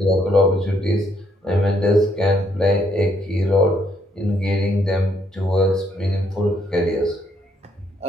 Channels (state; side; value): normal; both; correlation 0.71